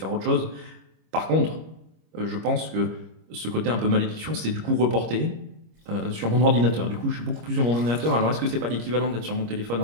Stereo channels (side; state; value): left; late; 25 ms